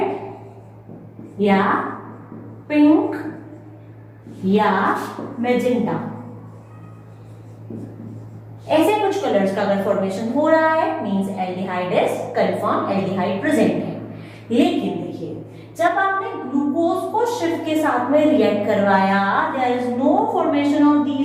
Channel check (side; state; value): both; identical; correlation 1.00